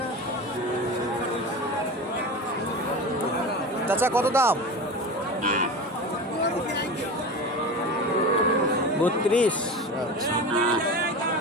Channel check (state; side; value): normal; both; correlation 0.29